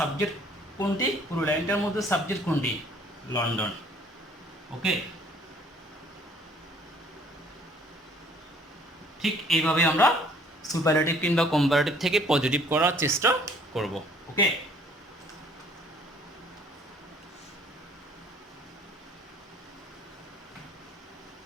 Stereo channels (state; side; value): normal; both; correlation 0.58